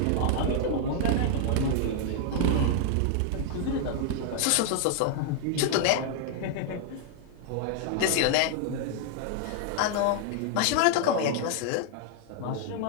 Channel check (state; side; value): different; both; correlation 0.00